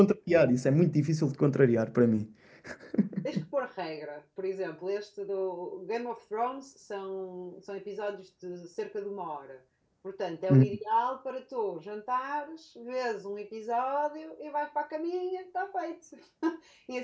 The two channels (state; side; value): identical; both; correlation 1.00